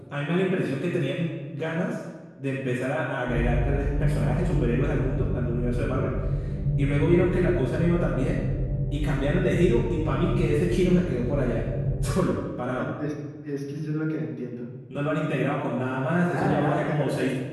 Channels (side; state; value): both; identical; correlation 1.00